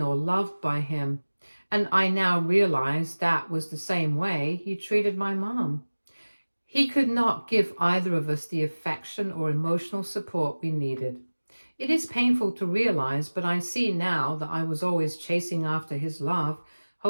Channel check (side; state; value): both; inverted; correlation -1.00